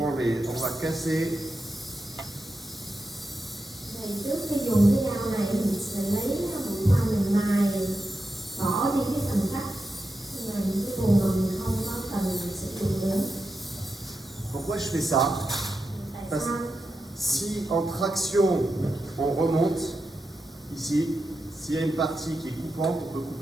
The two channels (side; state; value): both; normal; correlation 0.89